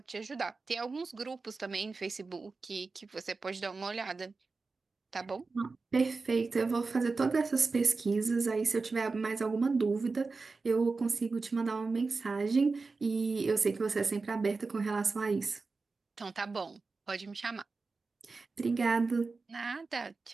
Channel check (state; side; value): quieter; left; 4.1 dB